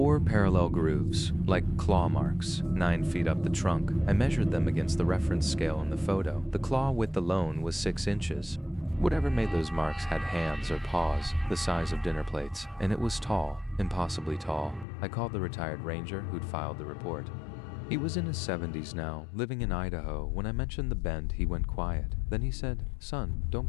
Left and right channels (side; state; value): right; drops out; at 14.9 s